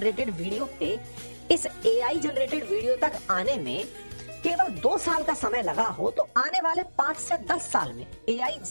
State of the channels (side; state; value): both; inverted; correlation -1.00